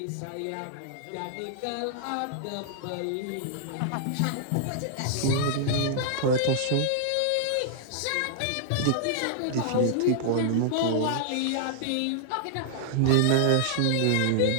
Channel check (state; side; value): different; both; correlation -0.01